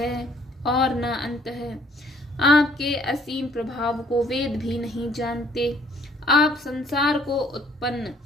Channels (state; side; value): normal; both; correlation 0.61